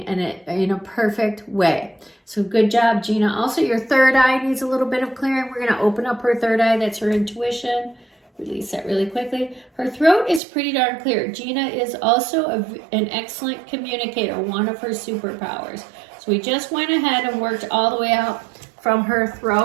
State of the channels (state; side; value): drops out; left; at 10.4 s